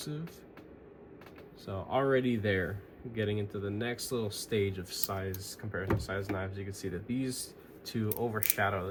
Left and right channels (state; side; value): identical; both; correlation 1.00